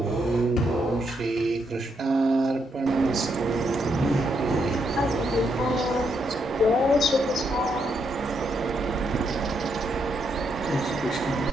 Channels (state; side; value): normal; both; correlation 0.78